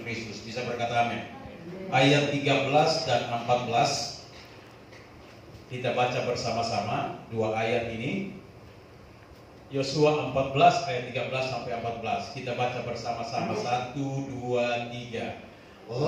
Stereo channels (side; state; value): both; identical; correlation 1.00